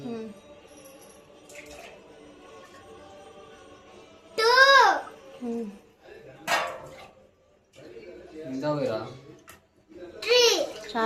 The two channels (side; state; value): both; identical; correlation 1.00